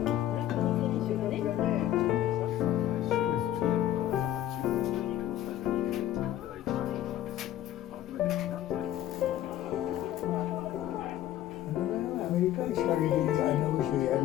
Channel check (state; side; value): quieter; right; 12.7 dB